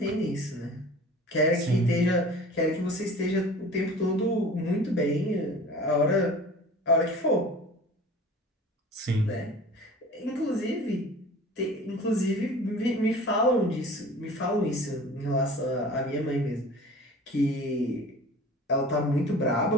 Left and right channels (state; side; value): normal; both; correlation 0.42